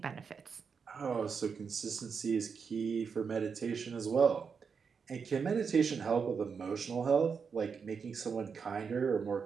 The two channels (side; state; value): left; quieter; 5.9 dB